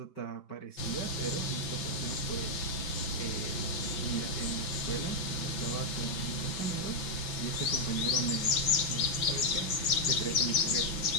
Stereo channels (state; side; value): late; right; 5.9 ms